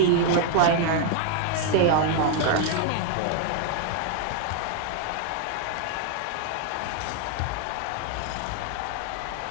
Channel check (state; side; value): different; both; correlation 0.00